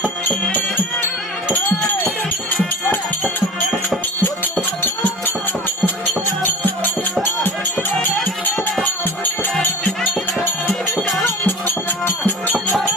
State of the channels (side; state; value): both; normal; correlation 0.36